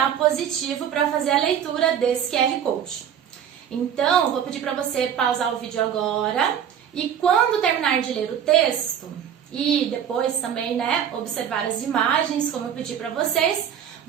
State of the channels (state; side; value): quieter; left; 8.9 dB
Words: Positivo para fazer a leitura desse QR Code. Então, eu vou pedir para você pausar o vídeo agora e quando terminar de ler o texto e depois também, né, observar as imagens, como eu pedi para vocês,